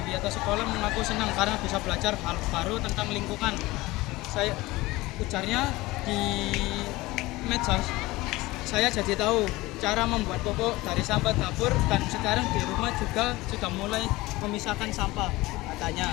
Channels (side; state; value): right; quieter; 20.0 dB